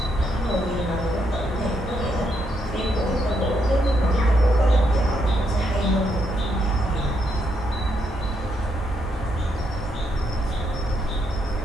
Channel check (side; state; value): both; normal; correlation 0.77